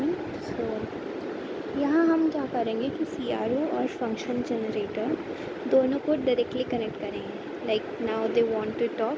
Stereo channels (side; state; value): both; identical; correlation 1.00